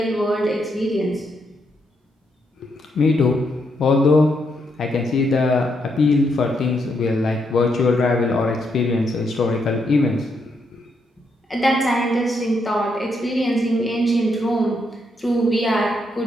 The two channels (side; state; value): both; normal; correlation 0.78